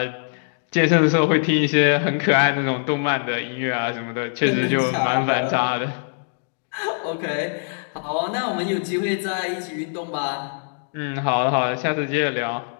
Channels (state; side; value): silent; right; digital silence